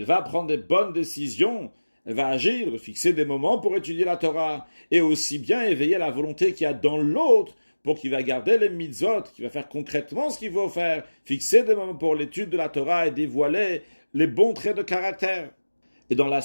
va prendre des bonnes décisions, elle va agir, fixer des moments pour étudier la Torah, et aussi bien éveiller la volonté qu'il y a dans l'autre, pour qu'il va garder les mitzvot, qu'il va faire concrètement ce qu'il faut faire, fixer des moments pour l'étude de la Torah et dévoiler les bons traits de caractère. Et dans la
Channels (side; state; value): both; inverted; correlation -1.00